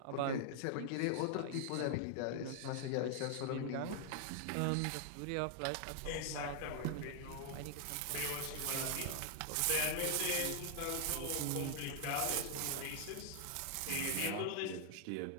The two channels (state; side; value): different; both; correlation 0.00